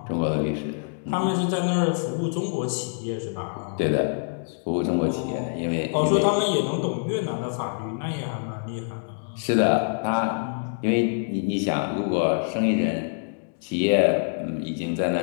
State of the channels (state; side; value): silent; right; digital silence